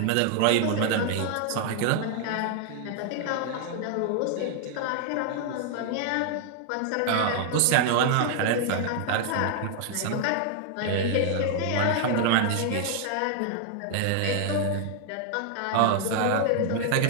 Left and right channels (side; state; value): both; different; correlation 0.00